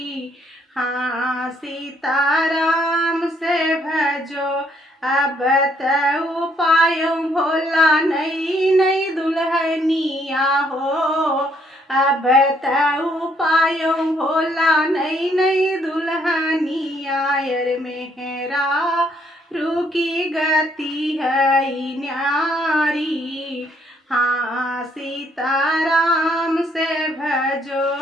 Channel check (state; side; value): normal; both; correlation 0.69